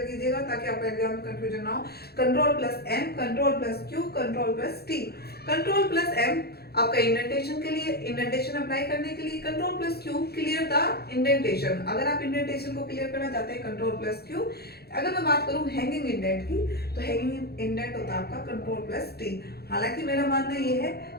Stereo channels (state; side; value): late; right; 0.46 ms